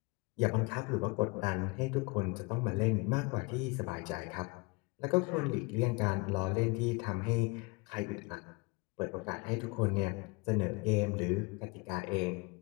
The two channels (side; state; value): right; quieter; 28.3 dB